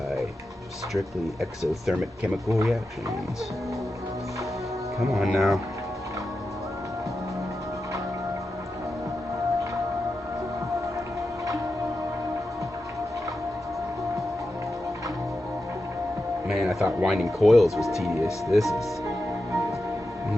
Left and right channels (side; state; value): both; normal; correlation 0.90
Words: strictly exothermic chemical reactions. Come on now. Man, I thought winding coils was tedious. This is